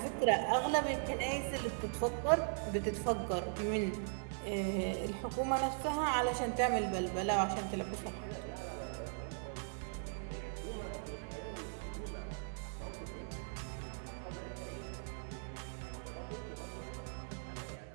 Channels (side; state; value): left; silent; 52 dB below the other